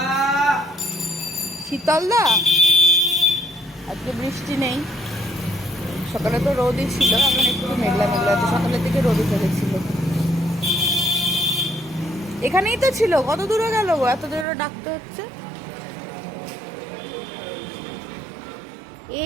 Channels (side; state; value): left; drops out; at 14.5 s